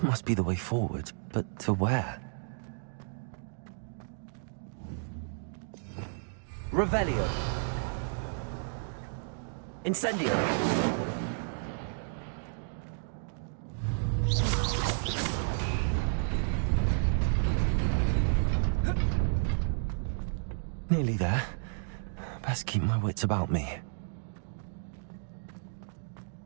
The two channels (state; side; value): silent; left; digital silence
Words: must be the way forward, but to where? Revelio. Incendio. Nearly there. Best keep my wits about me.